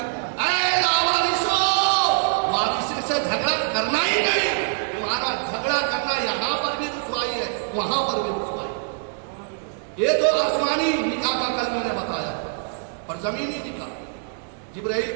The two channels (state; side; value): silent; left; digital silence